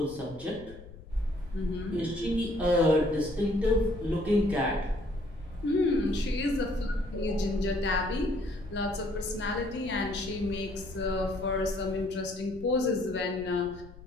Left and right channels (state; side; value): noise; left; rumble, 17 dB below the sound